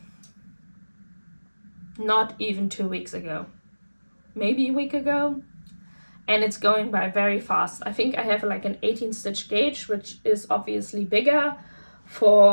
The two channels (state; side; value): inverted; both; correlation -1.00